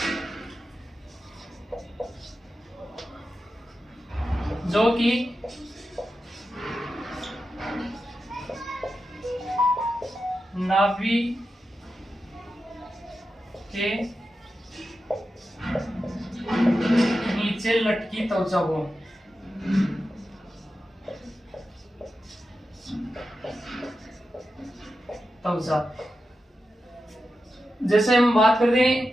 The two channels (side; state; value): both; normal; correlation 0.91